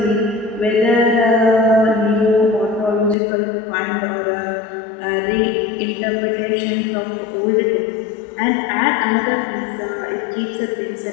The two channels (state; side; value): drops out; right; at 3.2 s